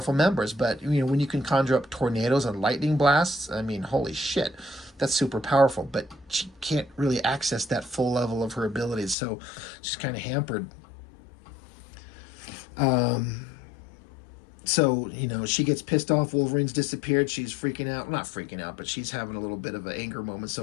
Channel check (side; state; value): right; drops out; at 9.2 s